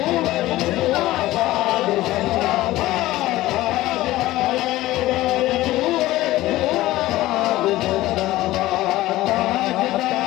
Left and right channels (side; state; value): right; quieter; 16.7 dB